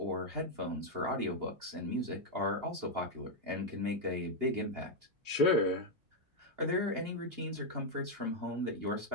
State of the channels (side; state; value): left; late; 2.8 ms